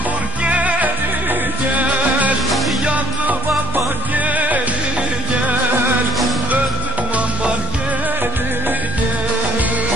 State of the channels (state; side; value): normal; both; correlation 0.55